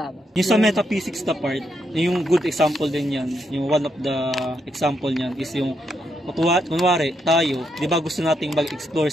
Yung sa metaphysics na part, yung good example din yan, yung one of the example niyan is yung kunwari tayo, 'di ba gusto nating mag-explore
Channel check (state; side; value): normal; both; correlation 0.79